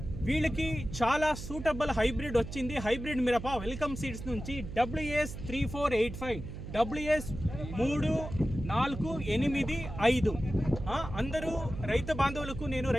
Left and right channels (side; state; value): right; noise; hum, 9 dB below the sound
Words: వీళ్ళకి చాలా సూటబుల్ హైబ్రిడ్ వచ్చింది. హైబ్రిడ్ మిరప వెల్కమ్ సీడ్స్ నుంచి WS 3485, WS 3485. అందరూ రైతు బాంధవులకు, నేను